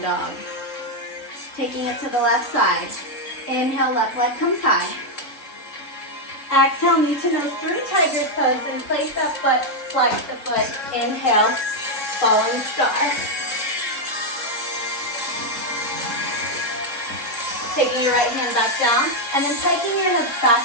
dog. Taking it to the left side. Inhale, left leg comes high. Exhale, knee to nose through tiger's pose. Then place that foot, flex the foot. Inhale, falling star. Taking your right hand back down, and then taking your hips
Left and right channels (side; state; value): right; late; 3.7 ms